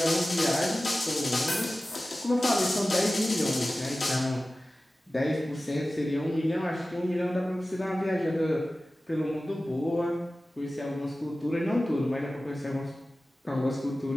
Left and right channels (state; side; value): normal; both; correlation 0.96